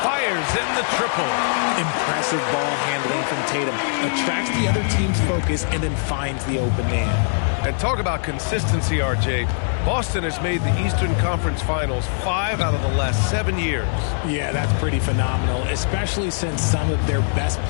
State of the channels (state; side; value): silent; right; 65 dB below the other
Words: Fires in the triple. Impressive ball handling from Tatum. Attracts the other team's focus and then finds the open man. And talk about consistency, RJ. Boston has made the Eastern Conference Finals 5 out of the last 7 years. Yeah, that's pretty phenomenal, especially since some of their best